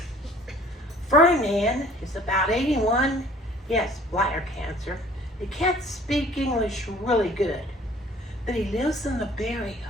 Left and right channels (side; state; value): both; normal; correlation 0.53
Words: Ferdinand is about 81. He has bladder cancer. He can't speak English really good, but he lives in the barrio